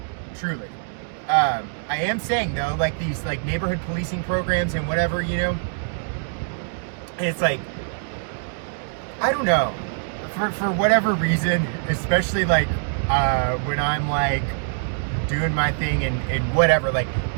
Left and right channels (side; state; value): left; silent; digital silence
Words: truly. I am saying though, like these like neighborhood policing programs and whatever, you know, and it's like, I don't know, for whatever reason, especially like when I'm like doing my thing and whatever, like